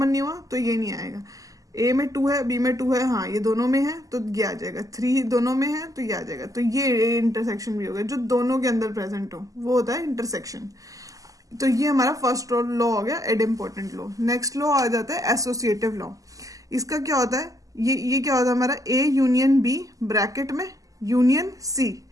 नहीं हुआ तो ये नहीं आएगा। ए में 2 है, बी में 2 है, हाँ ये दोनों में है तो ये आ जाएगा। 3 दोनों में है तो ये आ जाएगा। तो ये ए इंटरसेक्शन भी हो गया, जो दोनों के अंदर प्रेजेंट हो वो होता है इंटरसेक्शन। तो ये हमारा फर्स्ट लॉ हो गया, एडम्पोर्टेंट लॉ। नेक्स्ट लॉ आ जाता है एसोसिएटिव लॉ। इसका क्या होता है, ये क्या होता है हमारा, ए यूनियन बी ब्रैकेट में union C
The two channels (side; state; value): left; late; 0.17 ms